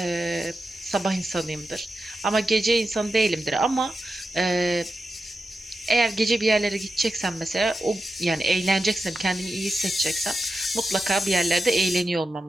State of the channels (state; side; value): normal; both; correlation 0.90